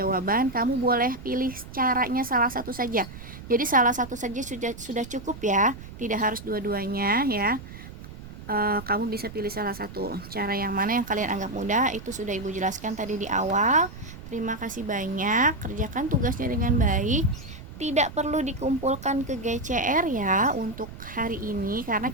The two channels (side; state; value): right; noise; rumble, 14 dB below the sound